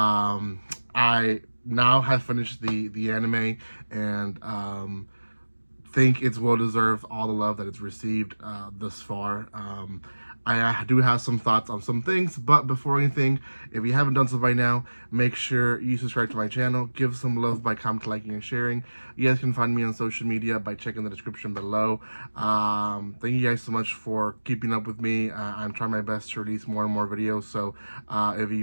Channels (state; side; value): inverted; both; correlation -1.00